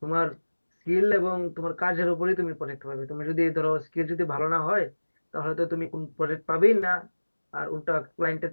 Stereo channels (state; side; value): inverted; both; correlation -1.00